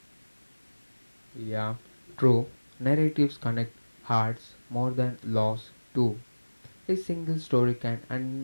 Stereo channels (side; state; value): both; inverted; correlation -1.00